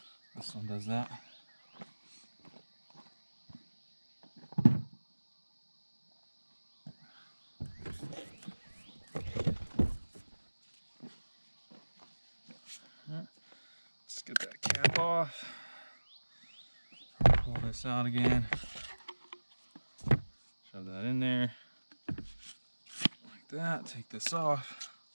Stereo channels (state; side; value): inverted; both; correlation -1.00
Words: This one does that. Let's get that cap off. Pull this out again. Shove that in there. Like that. Take this off.